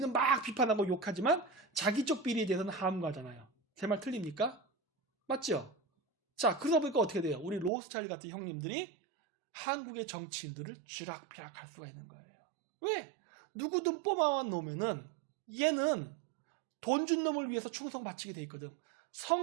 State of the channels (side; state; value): left; drops out; at 7.7 s